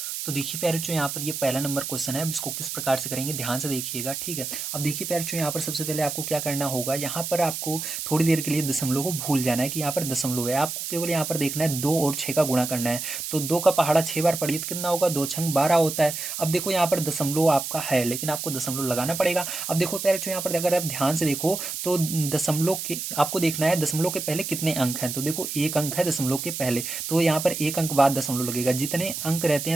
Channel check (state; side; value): noise; right; hiss, 5 dB below the sound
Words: तो देखिए प्यारे बच्चों यहाँ पर ये पहला नंबर क्वेश्चन है, अब इसको किस प्रकार से करेंगे ध्यान से देखिएगा। ठीक है, अब देखिए प्यारे बच्चों यहाँ पर सबसे पहले आपको क्या करना होगा, यहाँ पर आपको थोड़ी देर के लिए दशमलव को भूल जाना है कि यहाँ पर दशमलव है। आपको केवल यहाँ पर देखना है 2 और 6 का गुणा करना है। तो 2 का पहाड़ा 6 बार पढ़िए तो कितना होगा, 2 छंग 12 होता है। अब देखो यहाँ पर दशमलव आपका है लेकिन आपको दशमलव लगाना पड़ेगा। अब देखो प्यारे बच्चों यहाँ पर अगर आप ध्यान से देखो तो दशमलव के आपको देखना है दशमलव के पहले कितने अंक हैं। तो देखो एक अंक है दशमलव के पहले, तो यहाँ पर एक अंक बाद दशमलव लगेगा। जितने अंक रहते